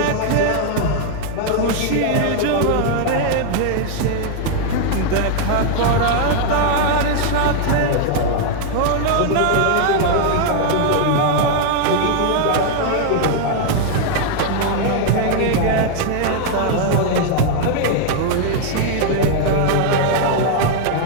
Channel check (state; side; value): different; both; correlation 0.00